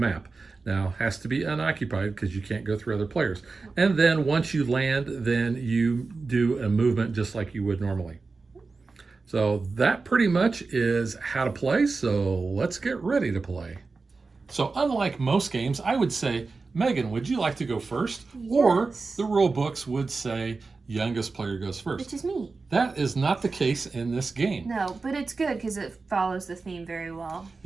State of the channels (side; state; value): left; quieter; 4.1 dB